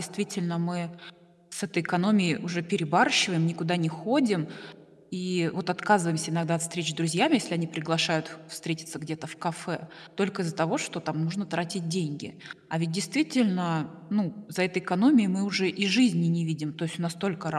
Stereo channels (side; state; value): both; identical; correlation 1.00